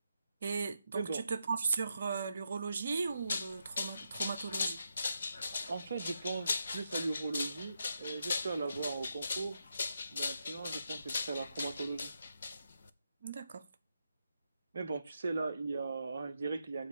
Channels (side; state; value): both; inverted; correlation -0.83